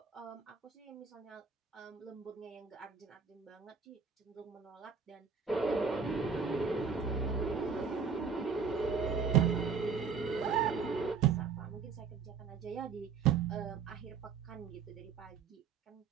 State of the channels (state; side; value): quieter; left; 5.9 dB